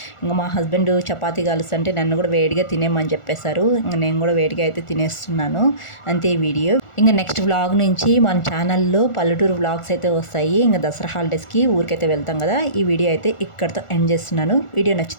ఇంకా మా హస్బెండ్ చపాతీ కాలుస్తుంటే నన్ను కూడా వేడిగా తినేమని చెప్పేశారు. ఇంకా నేను కూడా వేడిగా అయితే తినేస్తున్నాను. అంతే ఈ వీడియో. ఇంకా నెక్స్ట్ వ్లాగ్ నుంచి మన ఛానల్లో పల్లెటూరు వ్లాగ్స్ అయితే వస్తాయి. ఇంకా దసరా హాలిడేస్కి ఊరికైతే వెళ్తాం కదా. ఈ వీడియో అయితే ఇక్కడితో ఎండ్ చేస్తున్నాను. వీడియో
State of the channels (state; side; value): late; right; 1.4 ms